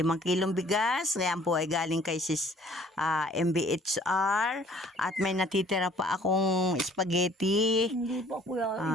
kilong bigas. Ayan po ay galing kay sis MBHR. At may natitira pa akong spaghetti. Hindi pa ko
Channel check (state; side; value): normal; both; correlation 0.55